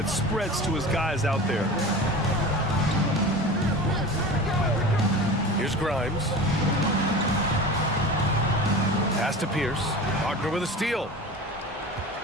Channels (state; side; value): normal; both; correlation 0.34